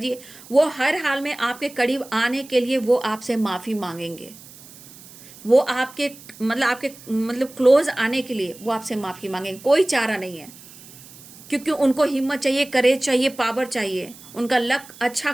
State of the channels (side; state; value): right; noise; hiss, 20 dB below the sound